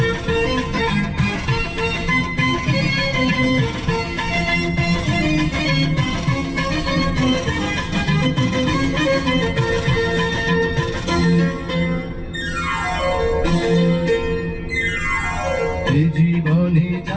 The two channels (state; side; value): identical; both; correlation 1.00